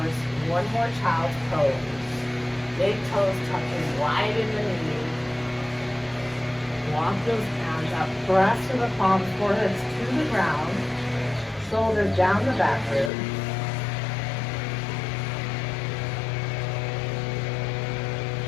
One more child's pose. Big toes touching wide in the knees. Walk those hands up, press to the palms, foreheads to the ground, shoulders down the back rib.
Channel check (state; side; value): drops out; right; at 13.1 s